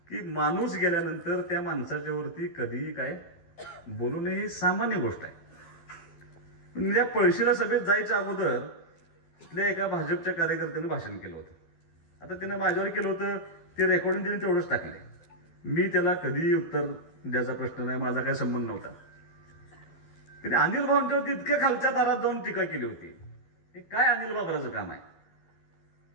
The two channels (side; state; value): right; late; 12 ms